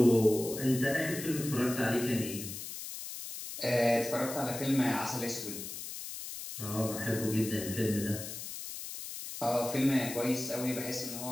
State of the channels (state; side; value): noise; left; hiss, 9 dB below the sound